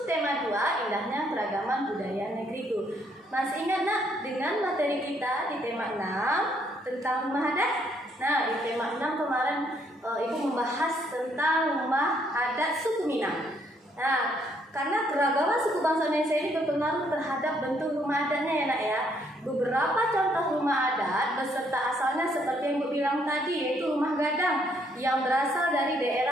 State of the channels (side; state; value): both; normal; correlation 0.70